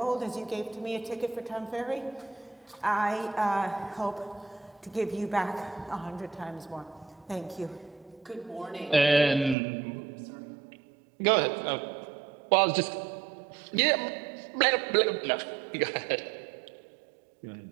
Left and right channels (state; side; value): drops out; left; at 9.6 s